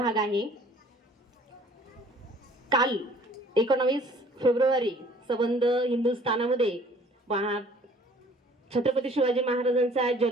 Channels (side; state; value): both; normal; correlation 0.54